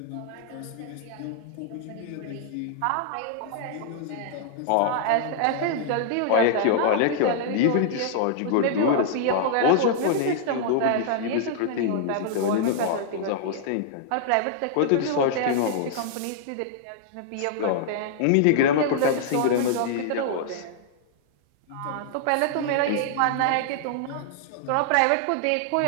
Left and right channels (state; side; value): different; both; correlation -0.01